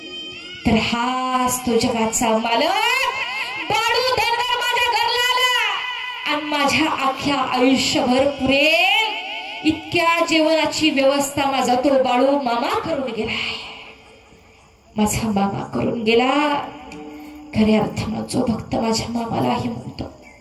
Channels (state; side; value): identical; both; correlation 1.00